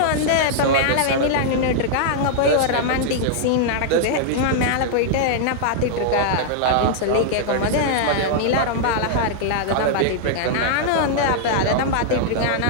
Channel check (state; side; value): different; both; correlation -0.01